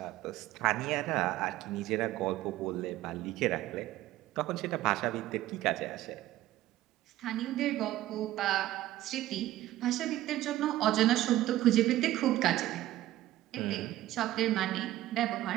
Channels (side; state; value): left; quieter; 14.9 dB